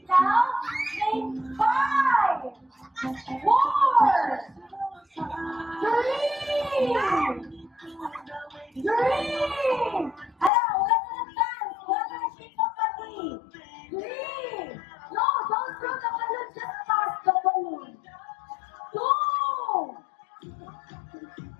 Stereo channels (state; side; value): drops out; right; at 10.5 s